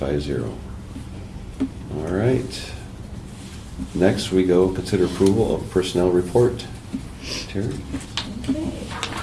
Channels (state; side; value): identical; both; correlation 1.00